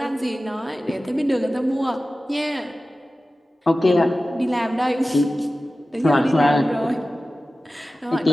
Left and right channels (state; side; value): normal; both; correlation 0.95